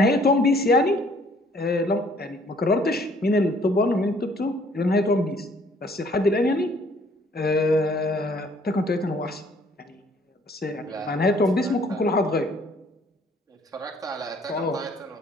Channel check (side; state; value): both; normal; correlation 0.60